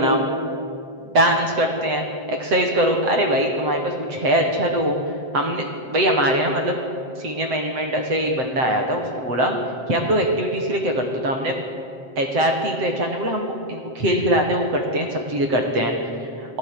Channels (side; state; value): left; late; 7.7 ms